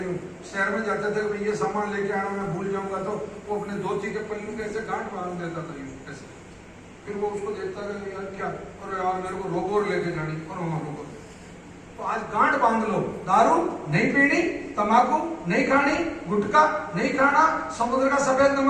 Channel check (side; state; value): both; identical; correlation 1.00